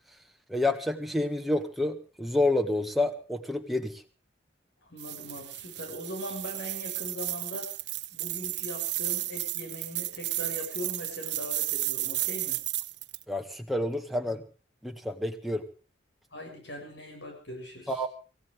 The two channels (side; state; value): both; normal; correlation 0.53